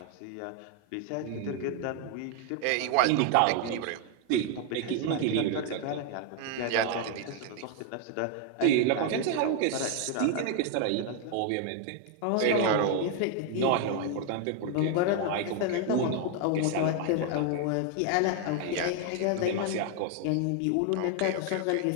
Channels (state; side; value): different; both; correlation 0.00